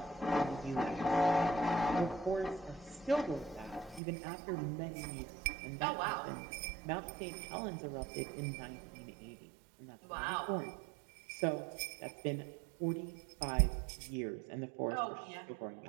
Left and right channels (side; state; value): left; drops out; at 4.0 s